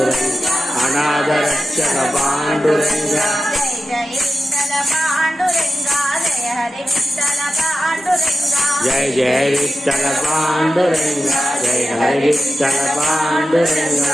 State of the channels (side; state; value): both; normal; correlation 0.91